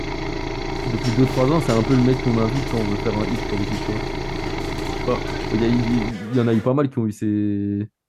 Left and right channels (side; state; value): both; identical; correlation 1.00